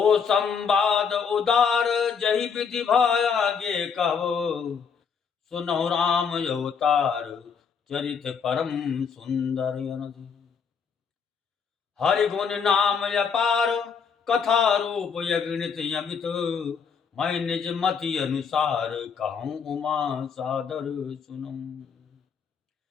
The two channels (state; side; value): quieter; right; 6.3 dB